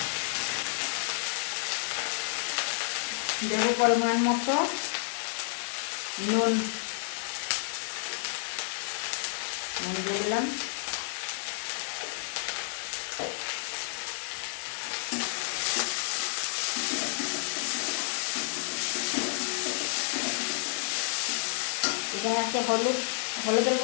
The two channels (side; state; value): right; silent; 58 dB below the other